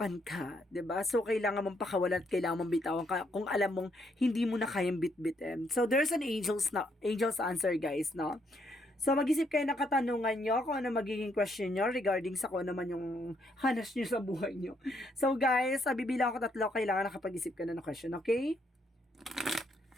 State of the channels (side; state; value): both; normal; correlation 0.73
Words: ka, 'di ba? So kailangan mong pakawalan at kailangan mong bitawan ka kung alam mong hindi mo na kayang bit-bitin. So there's an angel's answer, guys, no? So, mag-isip kayo ng katanungan nyo kung ano magiging question nyo regarding sa kung ano man yung hanas nyo sa buhay nyo. So, guys, bibilang ko 3, kailangan nakapag-isip ka na ng question, okay?